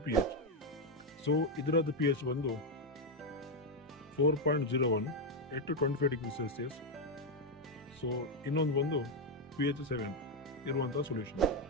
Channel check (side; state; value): both; normal; correlation 0.04